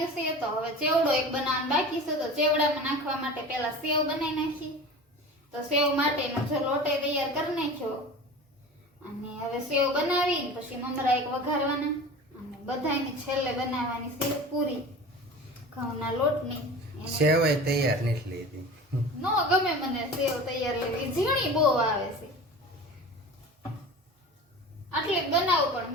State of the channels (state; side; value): normal; both; correlation 0.36